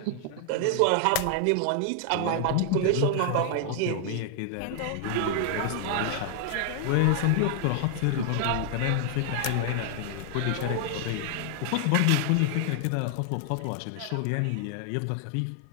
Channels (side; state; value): both; different; correlation 0.00